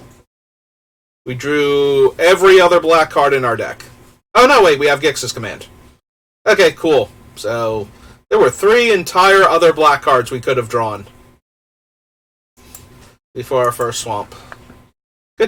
We drew every other black card in our deck. Oh, no, wait, we have Gix's Command. Okay, cool. So there were 3 entire other black cards we could have drawn before our first swamp.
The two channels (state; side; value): identical; both; correlation 1.00